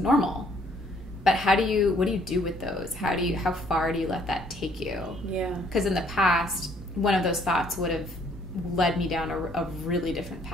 But what do you do with those? How far do you let that take you? Yeah. Because in the past, one of those thoughts would have led me down a really different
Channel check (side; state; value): both; normal; correlation 0.64